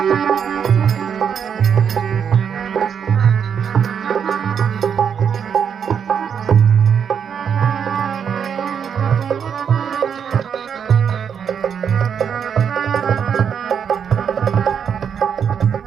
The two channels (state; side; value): quieter; left; 7.5 dB